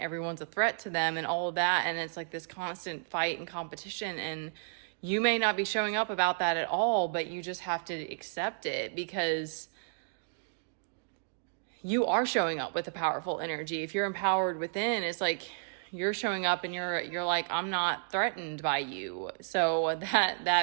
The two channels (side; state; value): left; silent; digital silence